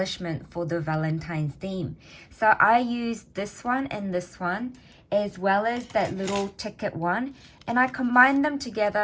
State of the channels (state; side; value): identical; both; correlation 1.00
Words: for the Valentine's theme. So I used this one and this one, as well as that little ticket one. And I combined them